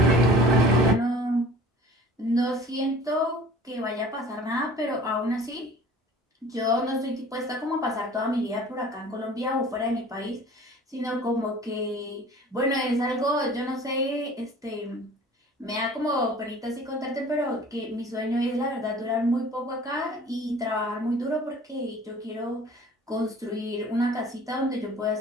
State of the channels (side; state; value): both; normal; correlation 0.46